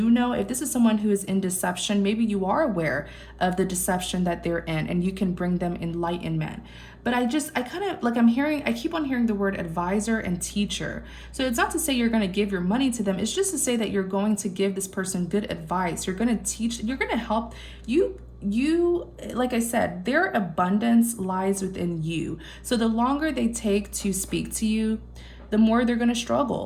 know, if this is someone who is in deception, maybe you are aware of the deception that they're in, and you can bring them enlightenment. But I kind of like, I keep on hearing the word advisor and teacher. So it's not to say you're going to give your money to them. It's just to say that you're going to give this person good advice. You're going to teach, you're going to help you, like I said, their abundance lies within you. So the longer they take to speak to you, the more they're going to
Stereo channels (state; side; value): identical; both; correlation 1.00